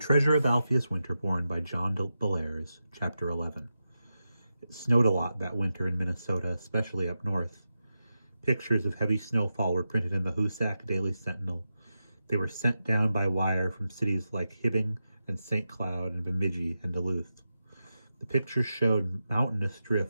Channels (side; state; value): both; inverted; correlation -0.90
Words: of Alpheus Winterborn by John Bellairs, Chapter 11. It snowed a lot that winter in Minnesota, especially up north. Pictures of heavy snowfall were printed in the Hoosac Daily Sentinel. They were sent down by wire from cities like Hibbing and St. Cloud and Bemidji and Duluth. The pictures showed mountainous